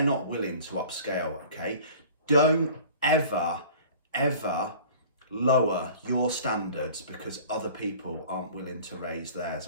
not willing to upscale. Okay, don't ever lower your standards because other people aren't willing to raise theirs.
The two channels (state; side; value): inverted; both; correlation -0.45